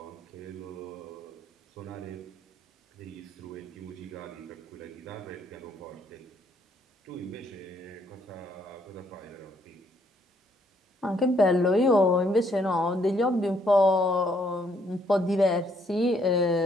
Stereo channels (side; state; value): both; normal; correlation 0.69